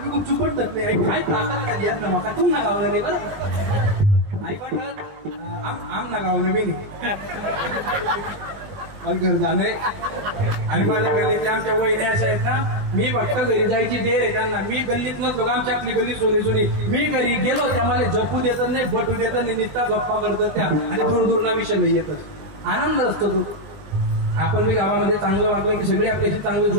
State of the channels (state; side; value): late; left; 20 ms